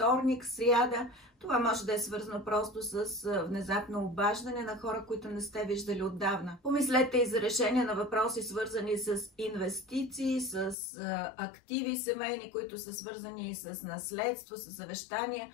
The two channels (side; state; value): right; drops out; at 10.8 s